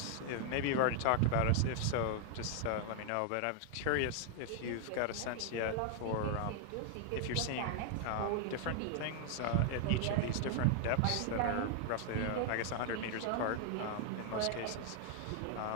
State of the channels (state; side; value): different; both; correlation 0.00